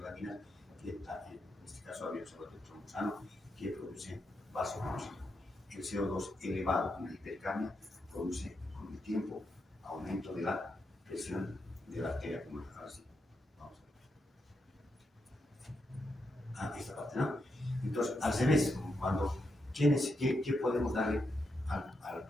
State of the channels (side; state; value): both; normal; correlation 0.83